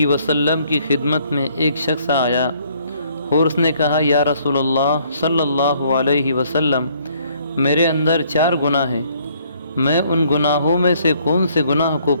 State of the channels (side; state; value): both; inverted; correlation -0.64